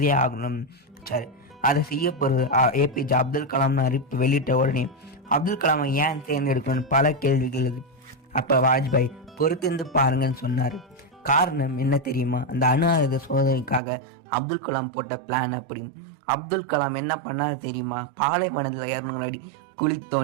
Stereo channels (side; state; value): left; drops out; at 13.8 s